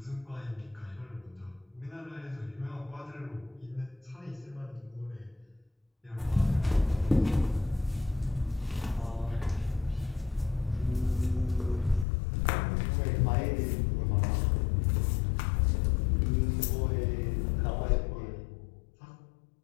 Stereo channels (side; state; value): right; drops out; at 12.1 s